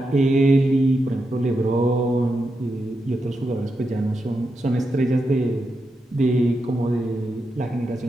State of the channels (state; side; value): normal; both; correlation 0.86